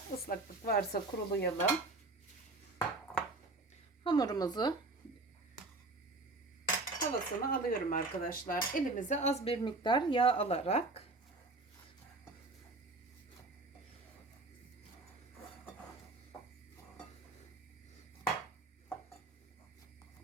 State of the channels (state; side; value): quieter; left; 3.1 dB